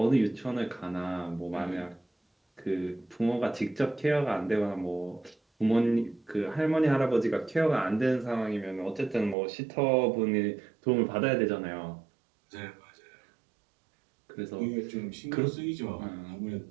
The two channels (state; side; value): drops out; left; at 9.3 s